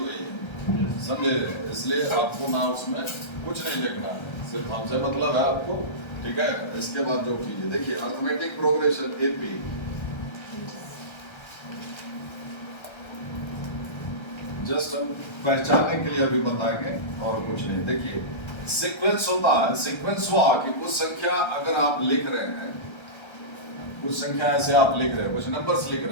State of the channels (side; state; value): right; late; 1.3 ms